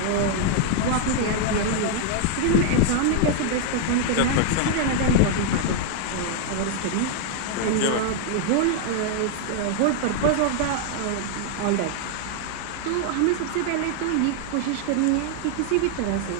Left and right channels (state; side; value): different; both; correlation 0.00